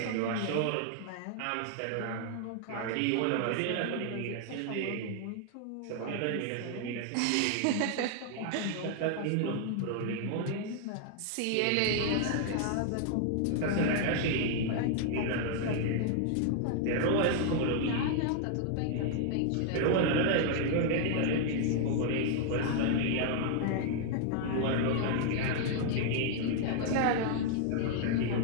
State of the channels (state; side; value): different; both; correlation 0.00